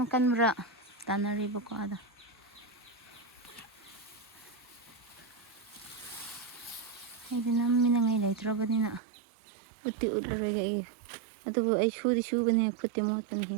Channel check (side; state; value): left; drops out; at 9.0 s